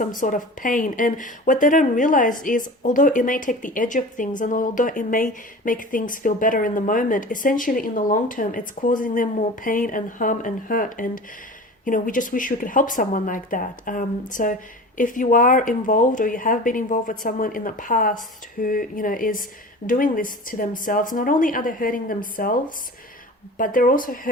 sort of pain. And what they don't realize is, although it may take the edge of things, and although it may make things feel better in the moment, essentially in the long term, it's causing them more pain and harm and hurt. And we just wish we could help someone like that. So if you are involved, or you have been involved with someone in the past who, is doing this to themselves, not only are they hurting themselves, but they're also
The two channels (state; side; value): normal; both; correlation 0.36